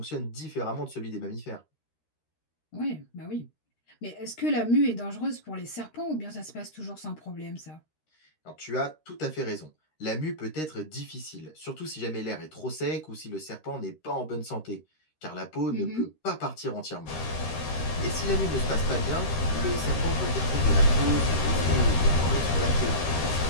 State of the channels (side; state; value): right; late; 13 ms